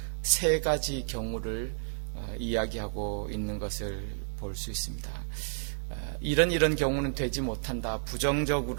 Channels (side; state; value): left; silent; digital silence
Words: 세 가지 경우를 이야기하고 있는 것을 볼 수 있습니다. 이런 경우는 되지 못한다.